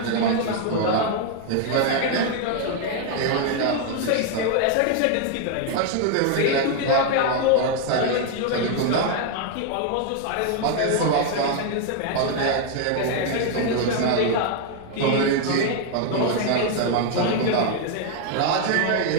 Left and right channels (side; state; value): both; different; correlation 0.00